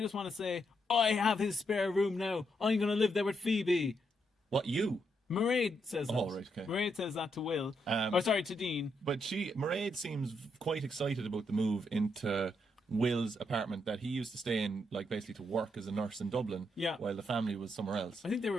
want to say, I have his spare room now. I'm going to live there with Phoebe." What, you? Mairead says that. Oh, right, okay. Mairead says that to Will. To Dean. But Mairead seems quite excited about the move into Will's apartment that he used to stay in, like basically to work as a nurse in Dublin, while the family was somewhere else. I think they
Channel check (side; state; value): both; normal; correlation 0.78